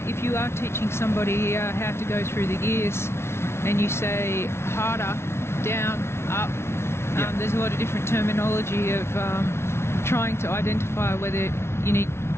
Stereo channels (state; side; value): late; right; 0.12 ms